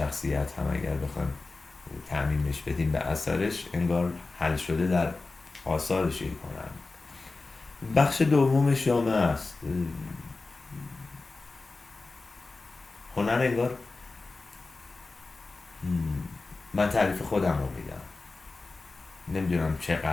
هم اگر بخوایم تعمیمش بدیم به اثرش، انگار حل شده در آثارش یک هنرمند. بخش دومش جامعه است. هنر انگار من تعریف خودم رو میدم، نمیدونم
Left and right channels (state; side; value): quieter; right; 3.6 dB